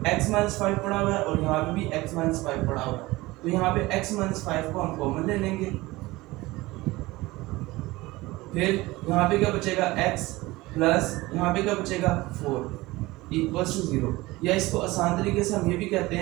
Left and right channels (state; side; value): quieter; left; 20.1 dB